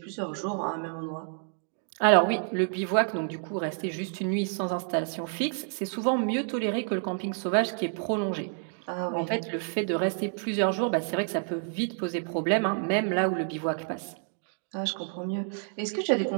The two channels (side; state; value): left; silent; 59 dB below the other